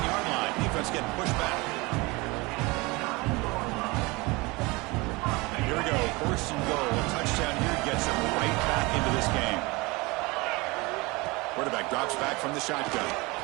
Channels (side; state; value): left; quieter; 24.4 dB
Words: line. Defense getting pushed back. And here we go. First and goal. A touchdown here gets him right back into this game. Quarterback drops back from the shotgun.